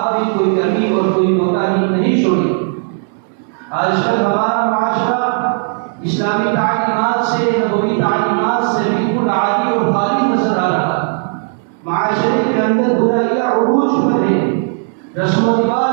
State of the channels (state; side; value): silent; left; 57 dB below the other